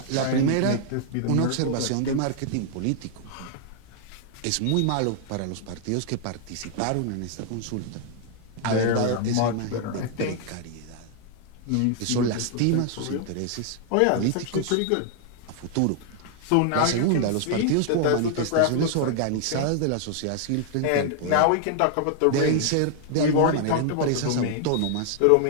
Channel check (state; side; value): different; both; correlation 0.00